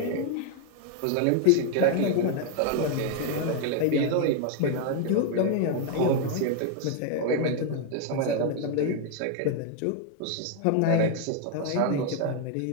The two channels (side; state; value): both; different; correlation 0.00